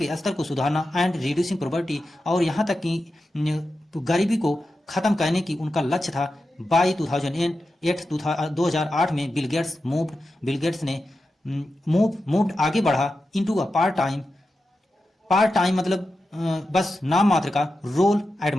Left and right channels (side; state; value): both; normal; correlation 0.91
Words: स्तर को सुधारना, एंड रिड्यूसिंग पॉवर्टी और यहाँ तक कि गरीबी को खत्म करने की उनका लक्ष्य था। बाई 2008 में बिल गेट्स ने मूव्ड आगे बढ़ा इनटू अ पार्ट टाइम मतलब बस नाम मात्र का रोल एट